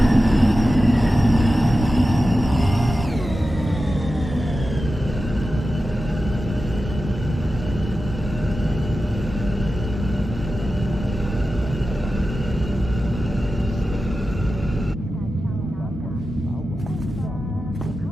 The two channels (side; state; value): both; normal; correlation 0.93